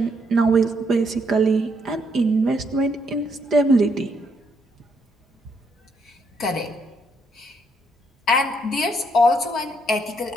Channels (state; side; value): normal; both; correlation 0.73